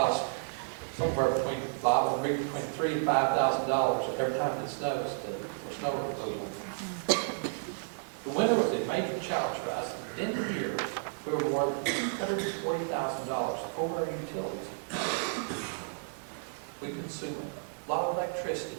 somewhere between $3,000 and $5,000 every time it snows for snow removal. The winter was a major challenge for us. At the end of the year, we were more than $140,000 over our utilities. We consume a lot of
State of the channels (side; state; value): left; silent; digital silence